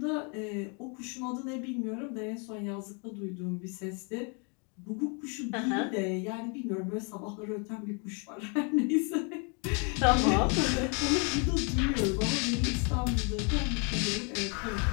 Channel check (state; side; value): quieter; right; 35.7 dB